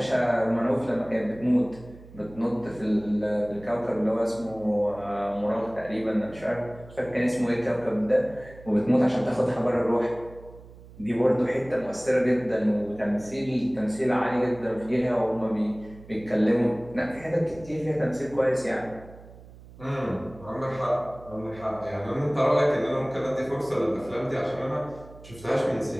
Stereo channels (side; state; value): right; noise; hum, 19 dB below the sound